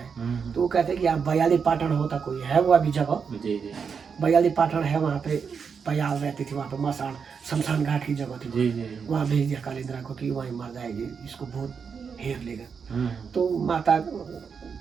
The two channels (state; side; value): quieter; left; 6.1 dB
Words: तो वो कहते हैं कि यहाँ बयाली पाटन होता कोई है, वो अभी जगह बयाली पाटन है, वहाँ पे बयाल रहती थी, वहाँ पे मसान शमशान घाट की जगह थी, वहाँ भेज दिया कालिंद्रा को कि वहीं मर जाएगी, इसको भूत घेर लेगा। तो माता